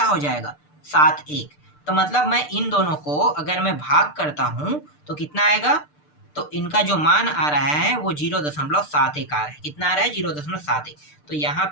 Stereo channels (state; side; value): late; right; 6.7 ms